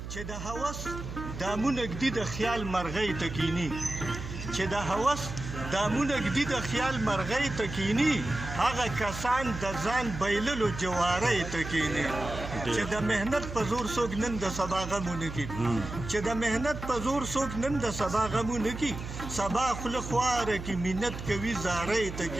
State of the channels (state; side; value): noise; right; hum, 8 dB below the sound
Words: چې د هوس دامونه ږدي د خیال مرغۍ ته کیني چې د هوس دامونه ږدي د خیال مرغۍ ته کیني هغه کسان د ځان بایللو جوارۍ ته کیني چې د مهنت په زور څوک نن د سبا غمونه کوي چې د مهنت په زور څوک نن د سبا غمونه کوي سبا خوله خواره کې منت کوي زارۍ ته